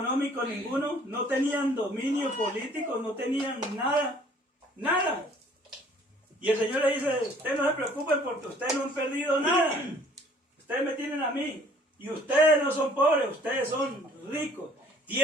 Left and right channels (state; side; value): normal; both; correlation 0.56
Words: ninguno, no tenían dominio político, no tenían nada, nada. Y el Señor le dice, ustedes no se preocupen porque ustedes no han perdido nada. Ustedes me tienen a mí. Y ustedes no son pobres, ustedes son ricos.